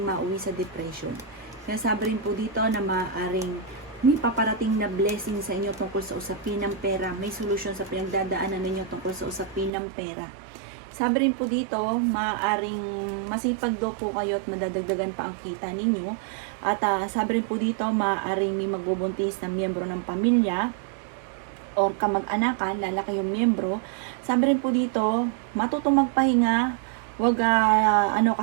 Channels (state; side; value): drops out; left; at 9.7 s